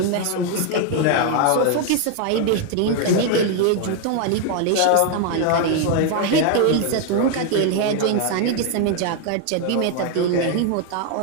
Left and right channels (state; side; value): different; both; correlation 0.01